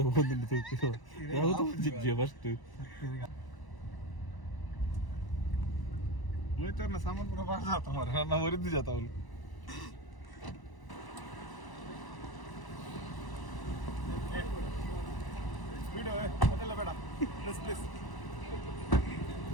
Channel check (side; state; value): right; late; 1.0 ms